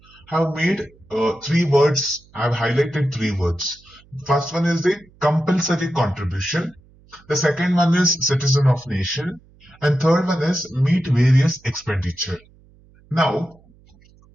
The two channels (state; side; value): noise; right; hum, 28 dB below the sound